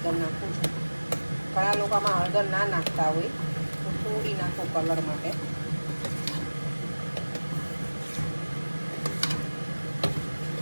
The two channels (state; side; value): inverted; both; correlation -1.00